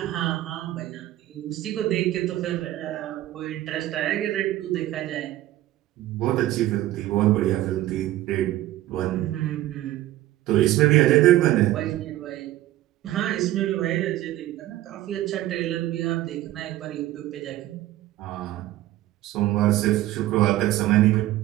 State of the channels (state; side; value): quieter; left; 15.0 dB